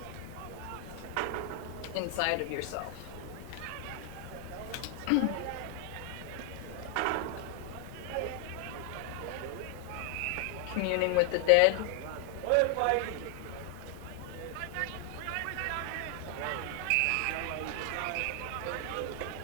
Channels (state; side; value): different; both; correlation 0.00